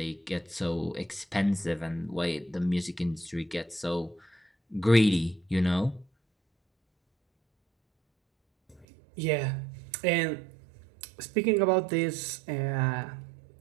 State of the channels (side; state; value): left; drops out; at 8.8 s